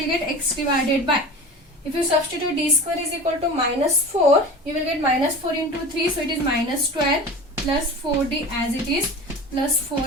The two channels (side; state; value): both; normal; correlation 0.34